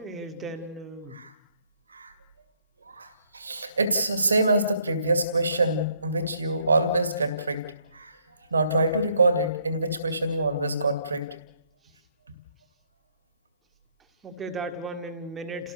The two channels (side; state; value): both; inverted; correlation -0.68